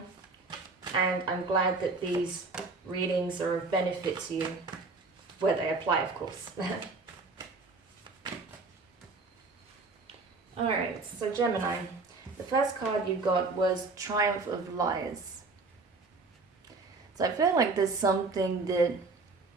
And I'm glad that these readings are of benefit to you, where they apply, of course. Alright, so Gemini, the first card you got was Triumph of Liars. So I feel like there's something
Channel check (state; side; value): quieter; left; 3.8 dB